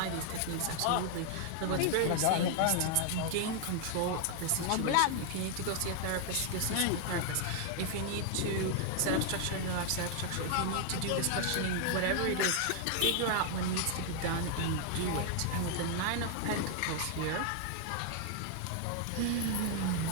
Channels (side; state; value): both; different; correlation 0.00